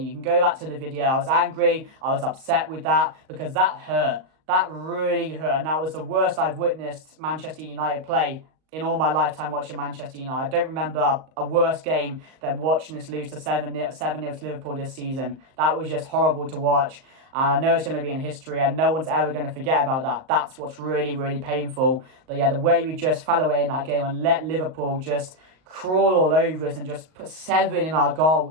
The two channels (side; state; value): left; late; 38 ms